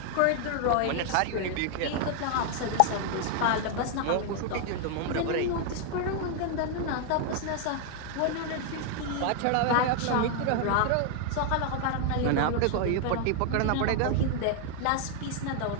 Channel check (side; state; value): both; different; correlation 0.00